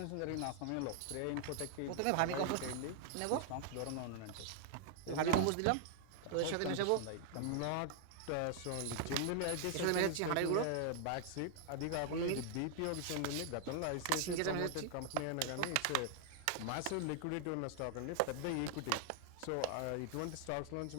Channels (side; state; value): both; different; correlation 0.00